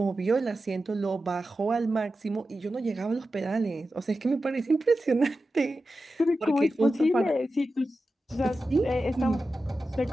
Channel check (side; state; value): both; normal; correlation 0.92